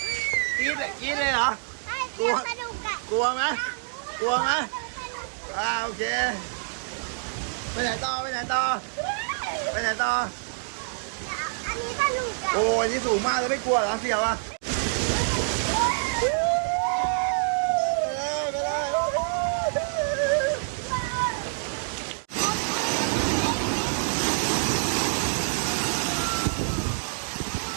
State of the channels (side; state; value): left; silent; digital silence